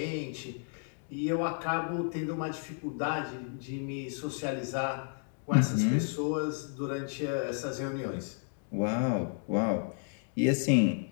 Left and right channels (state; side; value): silent; right; 56 dB below the other